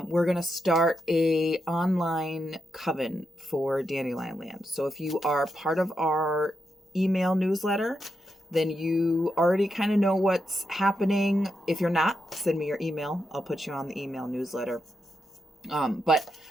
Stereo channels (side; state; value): both; normal; correlation 0.85